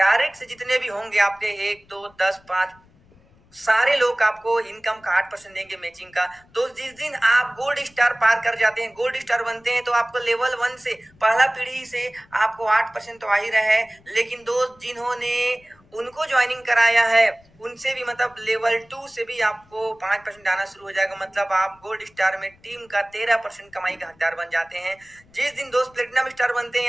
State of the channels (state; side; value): noise; left; rumble, 30 dB below the sound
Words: से जितने भी होंगे आपके 1, 2, 10, 5 सारे लोग आपको इनकम का 8% देंगे मैचिंग का। तो जिस दिन आप गोल्ड स्टार पार कर जाते हैं, गोल्ड स्टार बनते हैं, तो आपको लेवल 1 से पहला पीढ़ी से आपको 8% तो आ ही रहा है, लेकिन दोस्त जिन्होंने उनको ज्वाइनिंग कराया है उनसे भी, मतलब लेवल 2 से भी आपको 5% आना शुरू हो जाएगा। मतलब आप गोल्ड स्टार में टीम का 13% कमाई का हकदार बन जाते हैं। जिस दिन दोस्त प्लेटिनम स्टार बनते